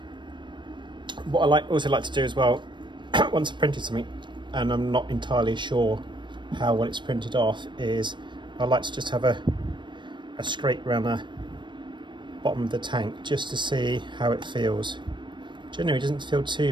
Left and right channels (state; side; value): late; left; 0.22 ms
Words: What I also like to do as well, once I've printed something and I'm not entirely sure how well it's printed off, is I like to just have a scrape around the bottom of the tank just to see how it feels. Generally it doesn't feel